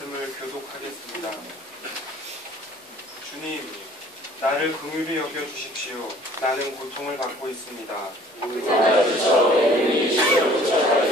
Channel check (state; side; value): normal; both; correlation 0.53